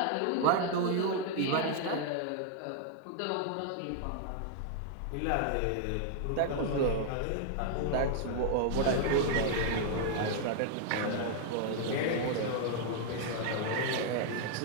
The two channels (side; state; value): both; different; correlation 0.00